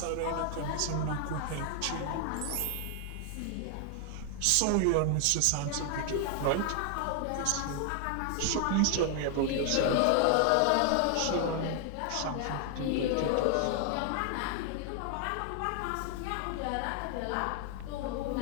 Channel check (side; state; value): both; different; correlation 0.00